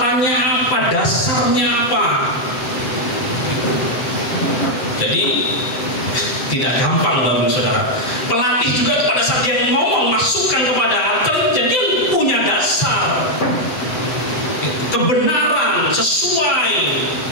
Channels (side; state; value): right; late; 7.9 ms